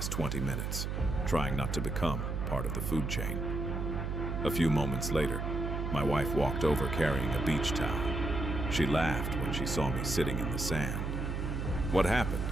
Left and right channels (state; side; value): noise; right; hum, 2 dB below the sound